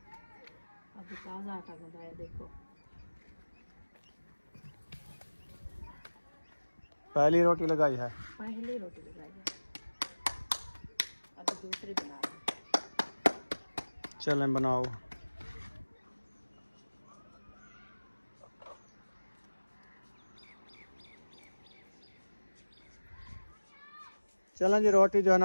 अभी ताजा आटा गंदा देखो। पहली रोटी लगाई है? पहली रोटी लगाई है, अभी दूसरी बना रहे हैं। चलें बनाओ। चलें जी, रोटी जो है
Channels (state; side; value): inverted; both; correlation -1.00